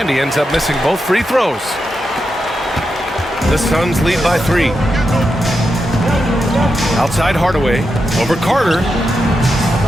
he ends up missing both free throws. The Suns lead by 3. Outside Hardaway, over Carter.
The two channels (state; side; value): normal; both; correlation 0.87